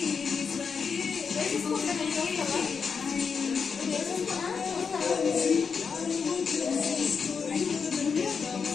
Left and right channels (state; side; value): quieter; right; 5.8 dB